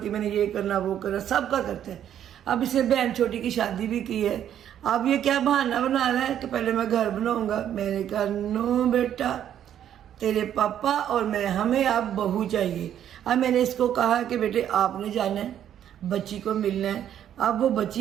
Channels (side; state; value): left; quieter; 10.3 dB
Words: है, मैंने ये करना वो करना सबका करता है। अब इसे बहन छोटी की शादी भी की है, अब ये क्या बहाना बना रहा है कि पहले मैं घर बनाऊंगा। मैंने कहा नो बेटा, तेरे पापा और मैं, हमें अब बहू चाहिए। अब मैंने इसको कहा कि बेटे आपने जाना है, बच्ची को मिलना है। अब वो